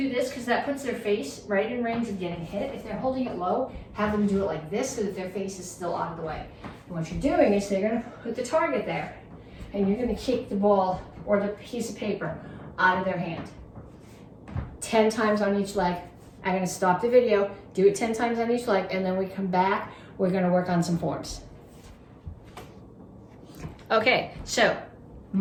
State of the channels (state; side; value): identical; both; correlation 1.00